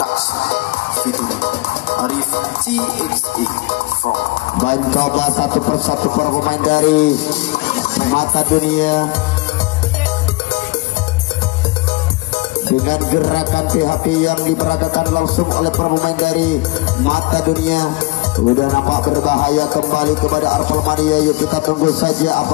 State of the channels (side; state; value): right; quieter; 22.9 dB